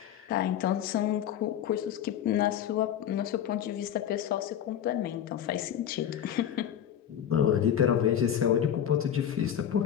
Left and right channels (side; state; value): right; quieter; 9.8 dB